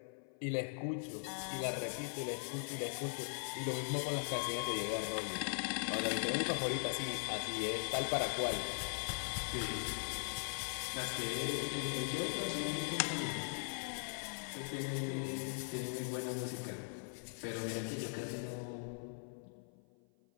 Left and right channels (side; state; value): right; silent; 51 dB below the other